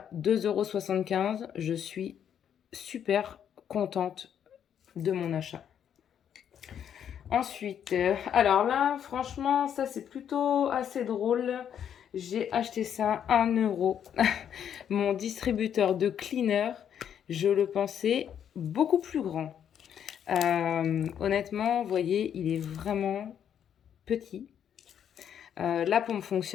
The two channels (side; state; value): right; quieter; 9.0 dB